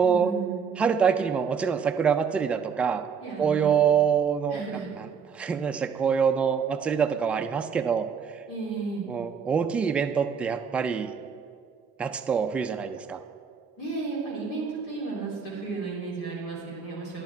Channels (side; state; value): left; quieter; 6.5 dB